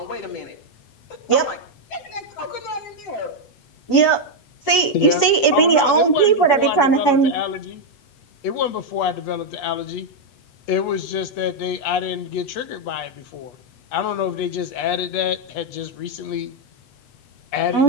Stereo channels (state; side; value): late; right; 8.2 ms